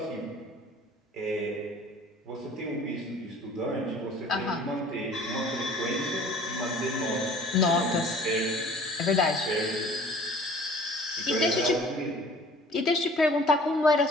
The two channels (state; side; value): normal; both; correlation 0.49